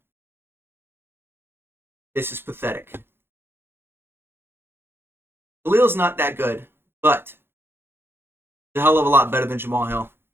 This is pathetic. Khalil's not that good, but a hell of a lot better than Jamal Hill.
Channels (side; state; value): left; late; 0.11 ms